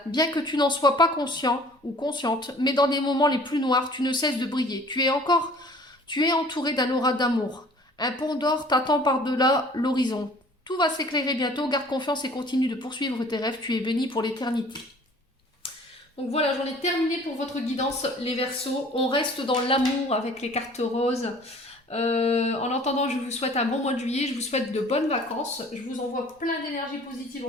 bien que tu n'en sois pas conscient ou consciente, mais dans des moments les plus noirs, tu ne cesses de briller. Tu es entouré d'un aura d'amour. Un pont d'or t'attend par-delà l'horizon. Tout va s'éclairer bientôt, garde confiance et continue de poursuivre tes rêves, tu es béni pour l'éternité. Donc voilà, j'en ai terminé pour votre guidance, les Verseaux. On reste dans l'amour avec les cartes roses. En attendant, je vous souhaite un bon mois de juillet, je vous souhaite de bonnes vacances, je vous envoie plein d'énergie positive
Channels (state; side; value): normal; both; correlation 0.50